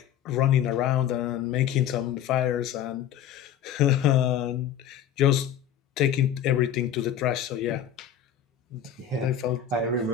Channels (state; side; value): quieter; right; 9.6 dB